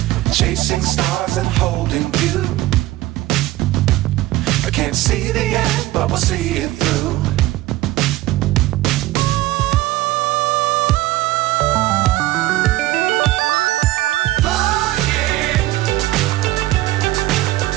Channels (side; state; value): left; quieter; 17.0 dB